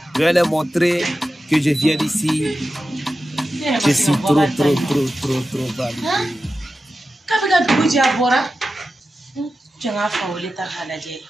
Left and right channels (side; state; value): both; normal; correlation 0.92